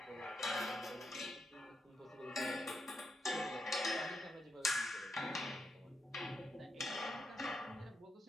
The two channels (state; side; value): normal; both; correlation 0.83